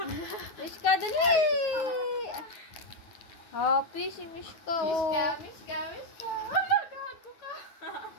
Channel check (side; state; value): right; late; 9.3 ms